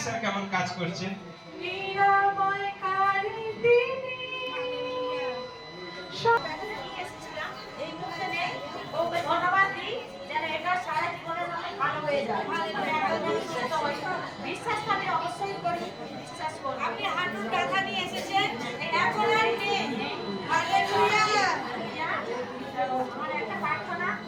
কেমন কাজ করছে? নিরাময়কারী তিনি। এই মুহূর্তে নেই, ওকে ধন্যবাদ দিই যেন এটা সারা জীবনের জন্য ভালো হয়ে যায়। বিশ্বাস আমি অবশ্যই করি, বিশ্বাস করি। আপনি হাঁটুর ব্যথা নিয়ে এসেছেন, এখন আর নেই। হালেলুয়া! আমার একটা প্রার্থনা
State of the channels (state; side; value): identical; both; correlation 1.00